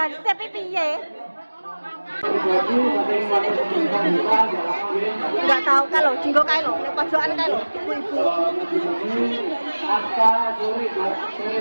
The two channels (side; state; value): both; inverted; correlation -1.00